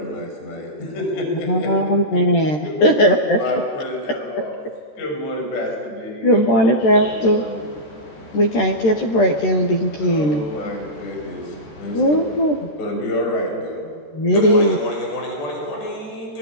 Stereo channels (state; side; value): late; right; 13 ms